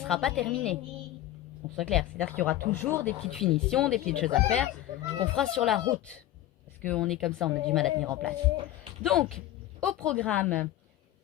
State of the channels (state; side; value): quieter; right; 13.8 dB